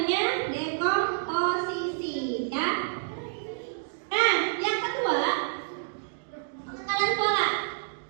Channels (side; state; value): left; silent; digital silence